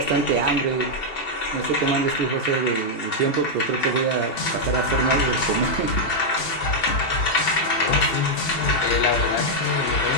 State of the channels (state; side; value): late; right; 2.7 ms